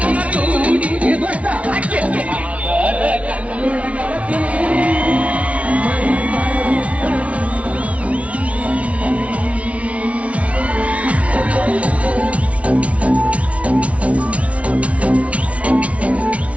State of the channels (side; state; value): left; late; 0.064 ms